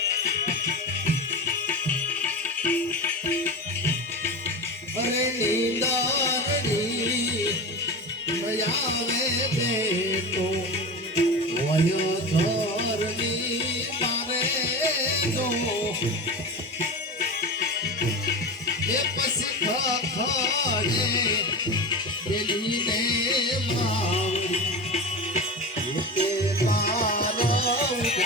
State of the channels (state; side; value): normal; both; correlation 0.26